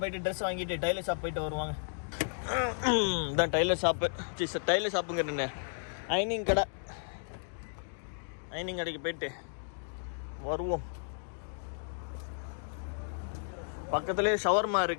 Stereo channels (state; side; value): silent; right; digital silence